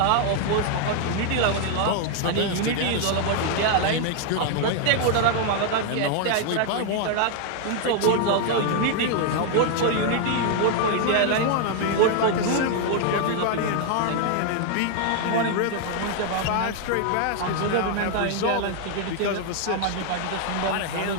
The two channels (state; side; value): different; both; correlation 0.00